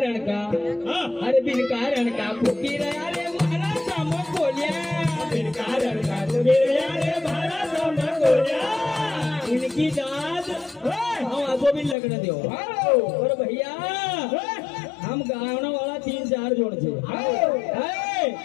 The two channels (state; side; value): drops out; right; at 12.0 s